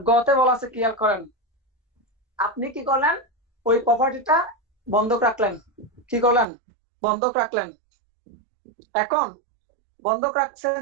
গতে বলা আছে, ক্লিয়ার করেন, আপনি কি করলেন, ওই প্রপার্টিটা বন্ধক রাখলেন, কি করলেন, বন্ধক রাখলেন। এখন বন্ধক রাখছেন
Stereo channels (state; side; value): drops out; left; at 6.5 s